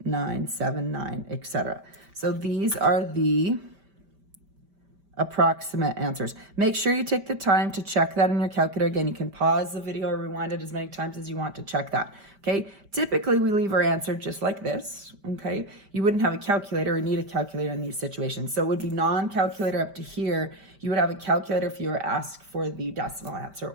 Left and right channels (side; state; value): left; late; 5.1 ms